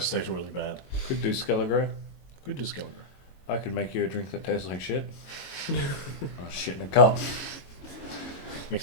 to taste really bad. Could do Skelligro. Could do Skelligro. I could make you a drink that tastes like shit. Oh, shit in a cup.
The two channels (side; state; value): right; late; 22 ms